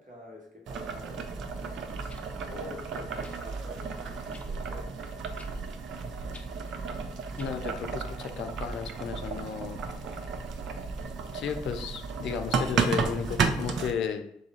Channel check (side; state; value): both; normal; correlation 0.56